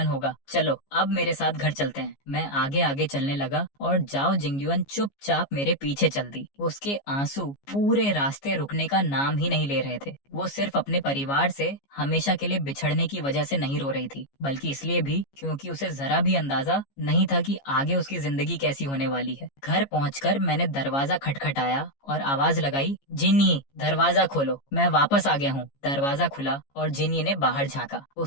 होगा। चलो अब मेरे साथ घर चलते हैं। मैं आगे आगे चलने लगा और जाओ जिंगयुआन चुपचाप मेरे पीछे चल दी। उसके आंसू पूरे रास्ते रुकने का नाम ही नहीं ले रहे थे। वो सिर्फ अपने परिवार से हमेशा के लिए बिछड़ने की वजह से नहीं रो रही थी, बल्कि इसलिए भी क्योंकि उसे जरा भी अंदाजा नहीं था कि आगे उसकी जिंदगी कैसी होने वाली है। घर पहुंचकर मैंने दरवाजा खटखटाया और आवाज लगाई, जिन्नी दरवाजा खोलो, मैं वापस आ गया हूँ। दरवाजा खुला और जिन्नी ने बाहर झांका।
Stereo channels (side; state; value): right; late; 15 ms